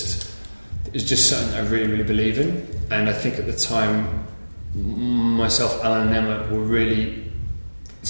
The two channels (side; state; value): both; inverted; correlation -1.00